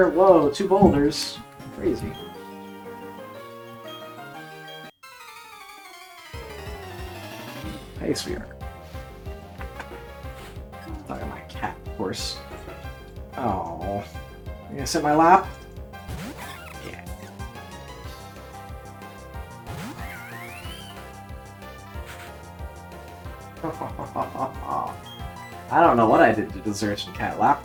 Whoa, 2 boulders. Crazy. Hey, sweetheart. Talking to my cat, of course. Oh. You gonna sit in my lap? Yeah. I don't know what I did to deserve some cat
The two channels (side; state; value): both; identical; correlation 1.00